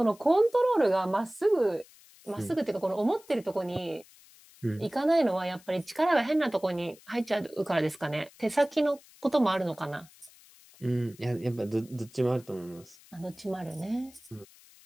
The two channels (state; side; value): noise; left; hiss, 25 dB below the sound